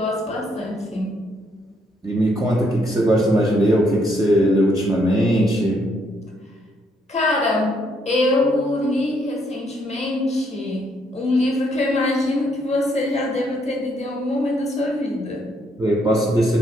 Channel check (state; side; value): normal; both; correlation 0.72